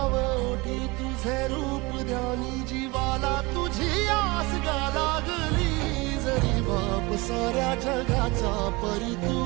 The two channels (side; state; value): left; quieter; 24.5 dB